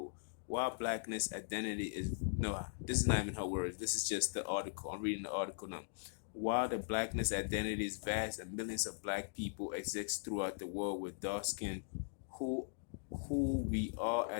While blackness identity is no, this is not even her words. This is just the article. I'm reading the article now. While the blackness identity is vast and millions of black people exist throughout the world with dark skin, who who we are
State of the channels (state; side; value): silent; right; digital silence